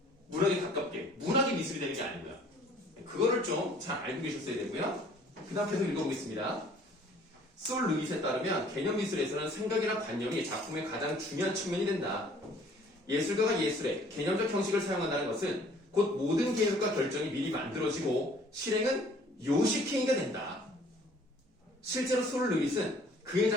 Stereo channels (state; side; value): normal; both; correlation 0.56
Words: 문학에 가깝게. 문학이 미술이 되는 게 아니고요. 그거를 좀 잘 알고 계셨어야 되고요. 그 다음 계속 읽어보겠습니다. 솔 루잇에 따르면 개념미술에서는 생각이나 관념이 작품의 가장 중요한 측면이 된다. 예술가가 예술의 개념적 형식을 사용한다는 것은 곧 모든 계획과 결정이 미리 만들어지고 실행은 요식행위가 된다. 실제로 솔 루잇은 그의